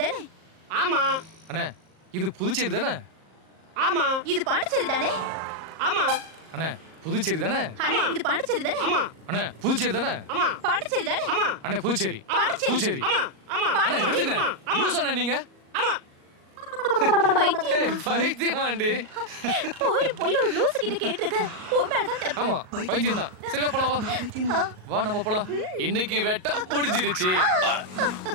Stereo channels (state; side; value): late; left; 38 ms